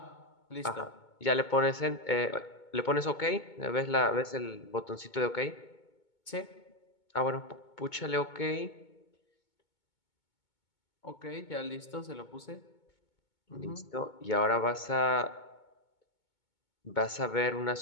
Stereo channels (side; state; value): right; late; 2.2 ms